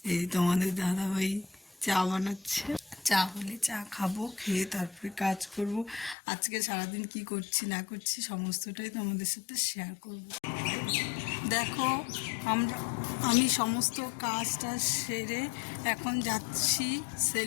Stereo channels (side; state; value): right; drops out; at 6.2 s